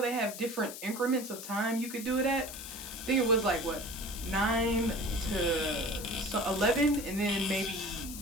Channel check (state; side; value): noise; left; hiss, 10 dB below the sound